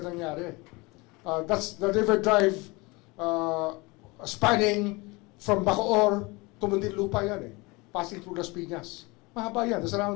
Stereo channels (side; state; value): right; quieter; 25.3 dB